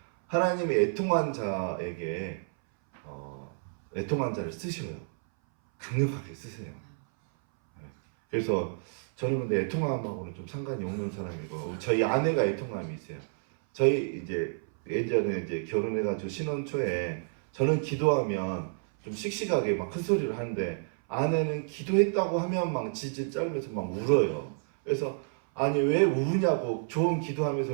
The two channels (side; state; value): left; silent; 58 dB below the other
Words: 하나님이 애통한 자에게 애통한 자를 쓰셔요. 강력하게 쓰세요. 그래서 저는 근데 애통함하고는 좀 상관이 없는 사람이고 저희 아내가 애통함이 있어요. 저희 이제 예전에 이제 결혼해가지고 신혼 초에 저는 기도하면 좀 씩씩하게 막 큰 소리를 하는데 아내는 기도했다고 하면 막 질질 짜면서 막 울어요. 그래서 아니 왜 우냐고 좋은 기도하면서